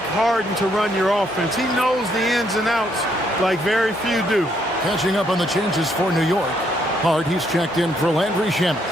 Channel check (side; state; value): both; normal; correlation 0.72